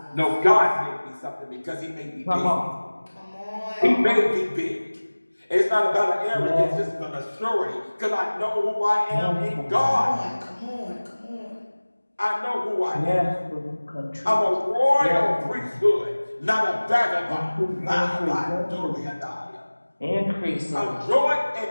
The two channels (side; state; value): both; inverted; correlation -1.00